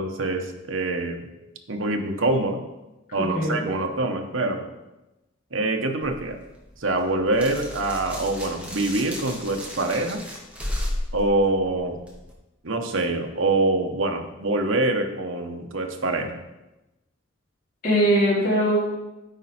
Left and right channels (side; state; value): both; normal; correlation 0.07